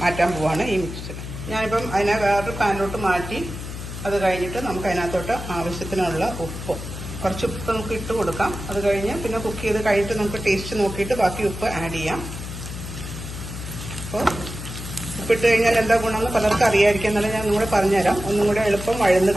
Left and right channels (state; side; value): noise; left; hum, 9 dB below the sound